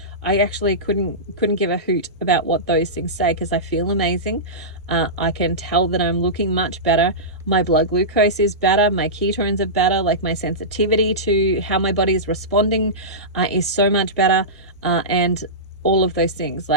I actually couldn't give a hoot about what those things say, because I feel amazing. I can tell that I'm looking much better. My blood glucose is better. My ketones are better. Like, my sensitivity to how my body is responding is so much better. And all of those things,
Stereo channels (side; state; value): both; normal; correlation -0.17